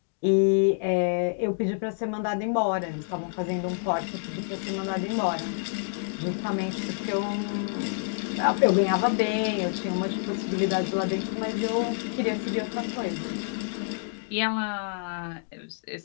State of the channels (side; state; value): right; silent; digital silence